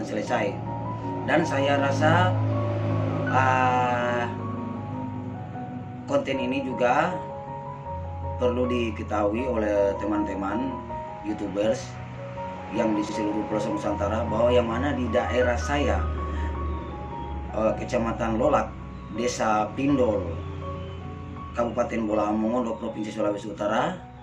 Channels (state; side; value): identical; both; correlation 1.00